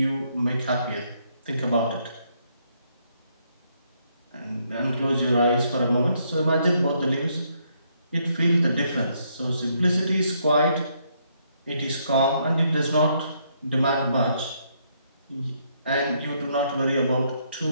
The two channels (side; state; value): both; inverted; correlation -0.73